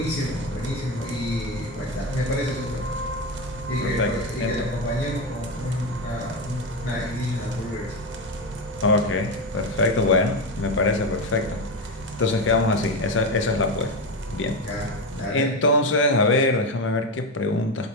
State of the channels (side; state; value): both; normal; correlation 0.15